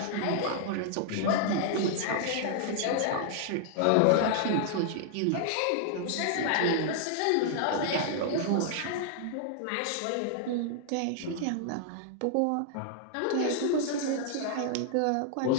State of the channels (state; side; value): different; both; correlation -0.01